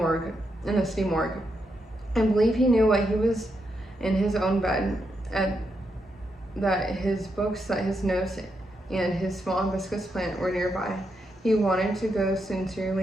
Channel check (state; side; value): normal; both; correlation 0.82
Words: city morgue. I believe he knew what he was in his own bed, that his books, that his notes, and his small hibiscus plant were nearby. He wanted to go